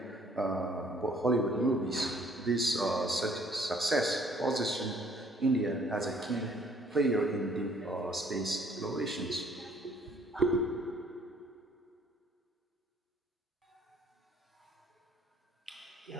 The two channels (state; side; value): normal; both; correlation 0.61